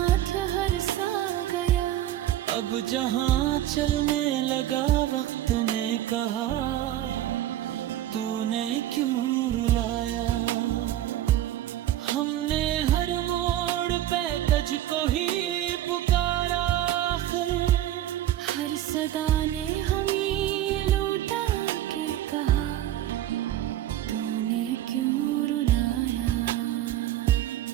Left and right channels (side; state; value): left; quieter; 13.1 dB